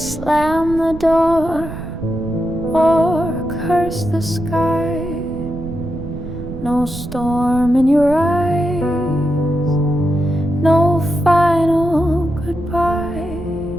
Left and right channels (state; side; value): noise; right; rumble, 11 dB below the sound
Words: the door or curse the sky. No storm in your eyes, no final goodbye.